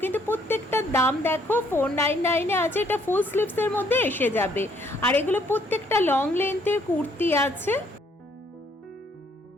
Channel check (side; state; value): both; normal; correlation 0.66